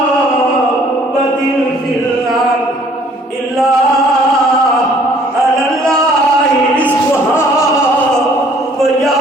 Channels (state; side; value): normal; both; correlation 0.58